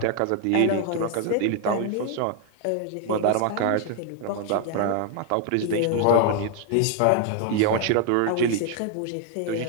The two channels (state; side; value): different; both; correlation 0.00